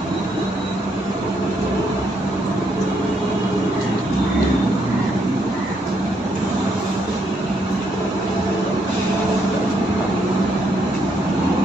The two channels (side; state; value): both; normal; correlation 0.74